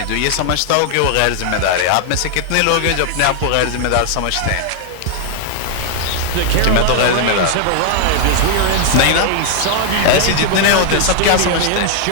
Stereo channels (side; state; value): both; different; correlation 0.00